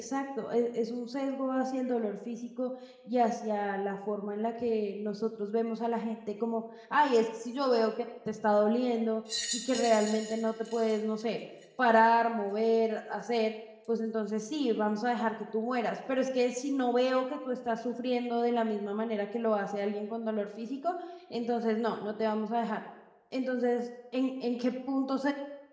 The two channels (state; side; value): identical; both; correlation 1.00